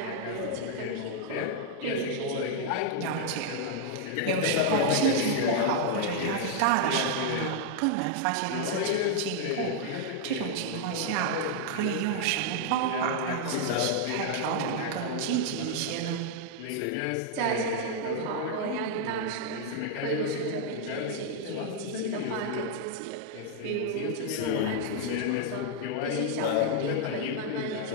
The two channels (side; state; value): both; different; correlation 0.00